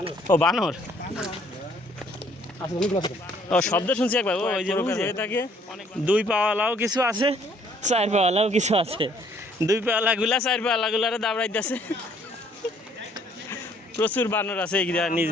ও বানর। ও শব্দ শুনছি একবার। ও ওই যে হয়ে থাকে। দুই পাওয়ালাও কিছু আছে, চার পাওয়ালাও কিছু আছে। দুই পাওয়ালাগুলা চার পাওয়ালাগুলারে দাবড়াইতেছে। প্রচুর বানর আছে এই নিচ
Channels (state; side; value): normal; both; correlation 0.62